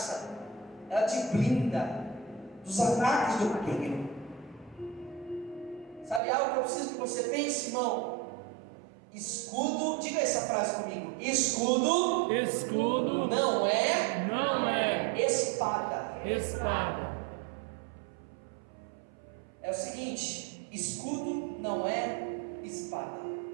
Ela te blinda dos ataques do maligno. Sabe algo que eu preciso que você pense, irmão? Escudo, diga essa frase comigo. Escudo não é espada. É o seguinte: escudo não é espada.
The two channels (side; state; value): left; drops out; at 6.2 s